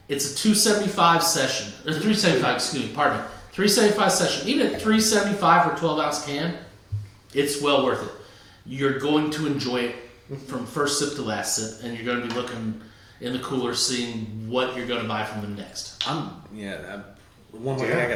It's a 275 session, or 375. Excuse me. Pardon me. 375 session. Even at 375 for a 12-ounce can, it's well worth it. You're going to enjoy it from first sip to last sip, and you're going to be looking in the cooler, seeing what you're going to buy from them next. One more thing I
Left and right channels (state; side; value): identical; both; correlation 1.00